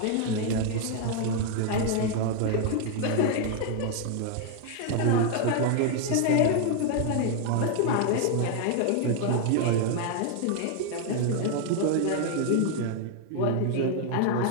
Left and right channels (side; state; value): both; different; correlation 0.00